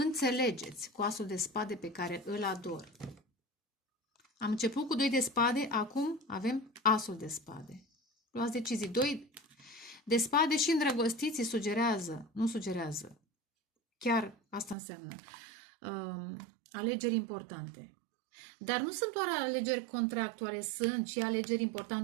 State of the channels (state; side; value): drops out; left; at 14.8 s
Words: cu asul de spade pe care îl ador. Am început cu 2 de spade, acum avem asul de spade. Luați decizii. 2 de spade și îndrăgostiții sugerează, nu sugerează. Chiar asta înseamnă. Alegeri importante. Dar nu sunt doar alegeri contractuale, sunt și alegeri